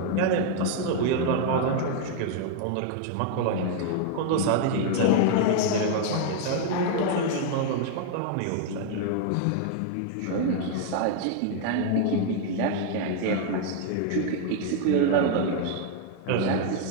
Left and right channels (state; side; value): different; both; correlation 0.00